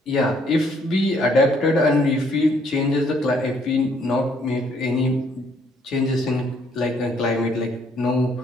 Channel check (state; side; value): normal; both; correlation 0.67